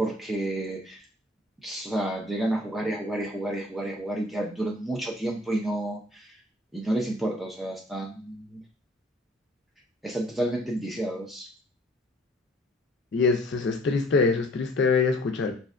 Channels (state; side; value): normal; both; correlation 0.56